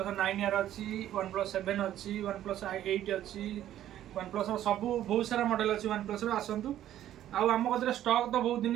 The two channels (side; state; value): left; quieter; 12.2 dB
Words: 9R अच्छी वन प्लस 7 अच्छी वन प्लस 8 अच्छी वन प्लस सब बहुत सारा मॉडल अच्छी वन प्लस आसतु आम कतरे स्टॉक तो बहुत